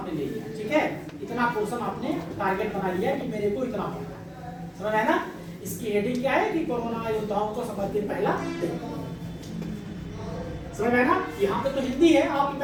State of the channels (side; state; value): both; identical; correlation 1.00